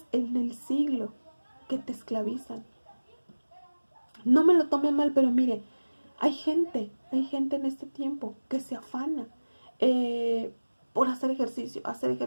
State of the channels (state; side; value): inverted; both; correlation -1.00